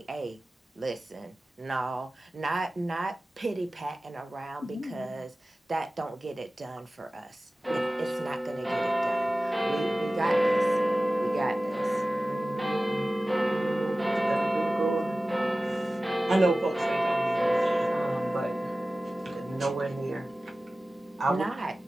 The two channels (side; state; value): both; normal; correlation 0.96